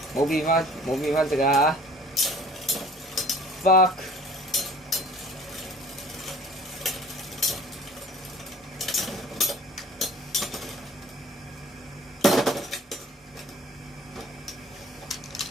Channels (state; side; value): normal; both; correlation 0.50